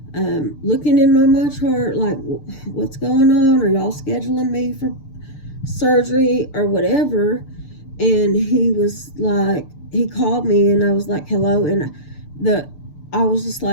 looking in my MyChart, like, what's going on? Are y'all scheduling me for surgery or whatever? And he was like, he called me, and I was like, hello. And I was just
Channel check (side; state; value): right; late; 6.8 ms